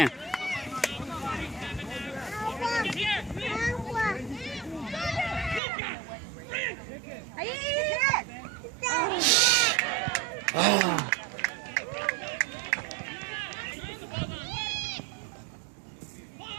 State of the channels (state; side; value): drops out; left; at 5.6 s